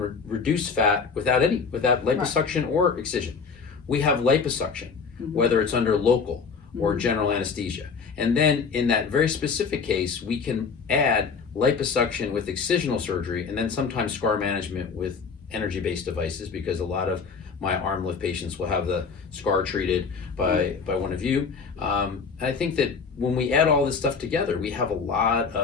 reduce fat without liposuction or excision. We have liposuction, whether it's under local or general anesthesia. And then in that very specific case, we can add liposuction with excisional surgery, and then sometimes scar management with energy-based devices, because a lot of my arm lift patients will have the scar treated by one of you. And I think that when we add all this stuff together, we have a lot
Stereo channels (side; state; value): right; quieter; 5.4 dB